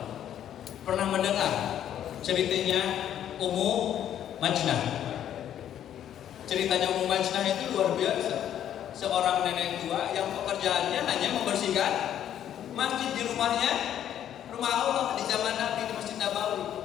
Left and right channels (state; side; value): quieter; right; 10.5 dB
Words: Pernah mendengar ceritanya Ummu Majnah? Ceritanya Ummu Majnah itu luar biasa. Seorang nenek tua yang pekerjaannya hanya membersihkan masjid di rumahnya, rumah Allah di zaman Nabi di Masjid Nabawi.